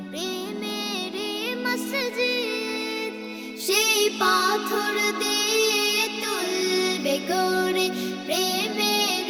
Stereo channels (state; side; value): identical; both; correlation 1.00